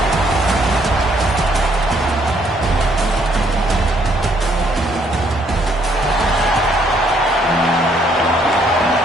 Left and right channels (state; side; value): normal; both; correlation 0.68